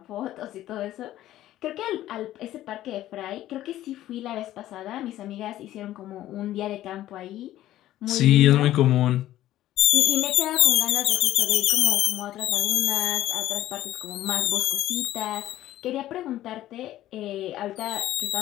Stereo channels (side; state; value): right; quieter; 13.9 dB